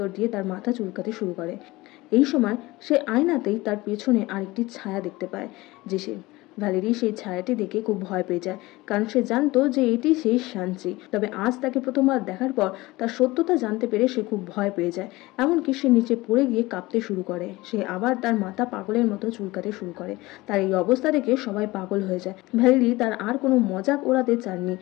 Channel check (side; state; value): right; quieter; 20.4 dB